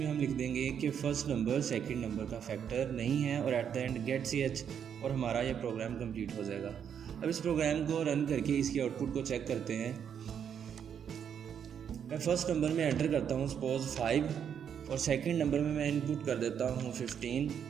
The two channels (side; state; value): left; quieter; 8.2 dB